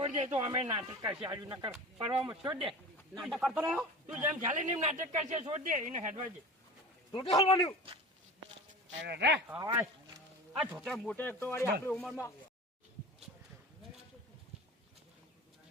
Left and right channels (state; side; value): normal; both; correlation 0.36